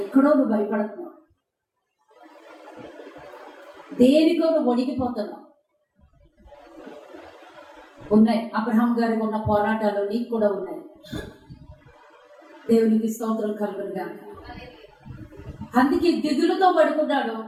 నువ్వు భయపడుతున్నావు, దేనికో నువ్వు వణికిపోతున్నావు. ఉన్నాయి. అబ్రహాం గారికి ఉన్న పోరాటాలు నీకు కూడా ఉన్నాయి. దేవునికి స్తోత్రం కలుగునుగా. అందుకే దిగులుతో పడుకున్నాడు.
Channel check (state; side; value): identical; both; correlation 1.00